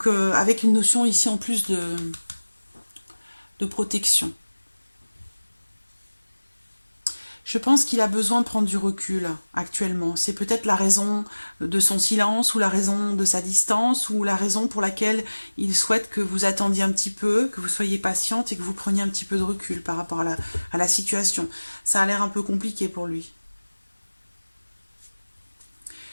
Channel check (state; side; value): inverted; both; correlation -1.00